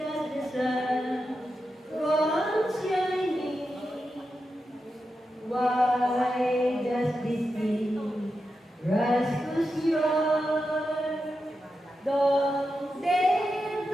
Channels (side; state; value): both; normal; correlation 0.89